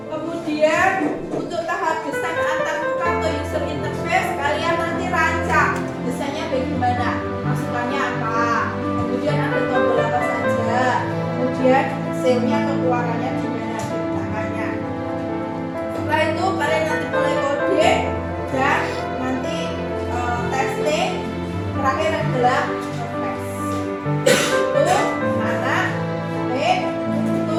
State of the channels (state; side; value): identical; both; correlation 1.00